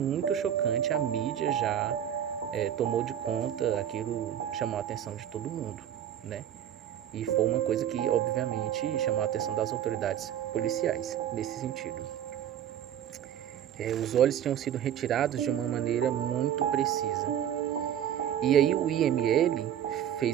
chocante, a mídia já tomou de conta, aquilo chamou a atenção de todo mundo, né? E foi uma coisa que, obviamente, chamou a atenção das autoridades policiais, nesse sentido. Os olhos tinham sido retirados de uma maneira muito precisa. E aí o IML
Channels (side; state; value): left; quieter; 10.3 dB